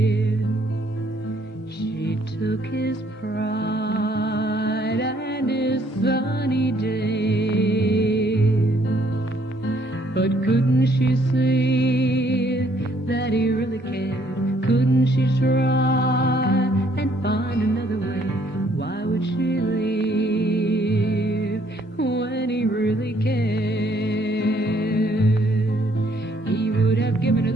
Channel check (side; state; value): both; normal; correlation 0.65